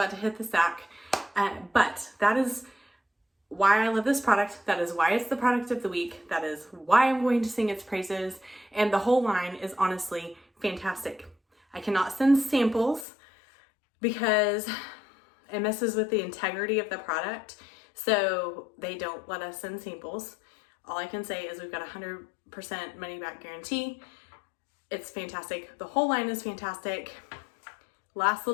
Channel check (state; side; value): drops out; right; at 13.1 s